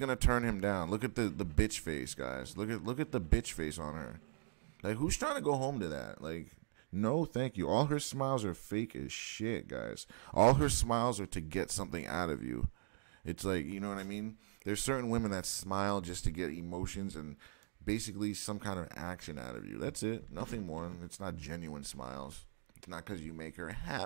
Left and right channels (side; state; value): left; silent; digital silence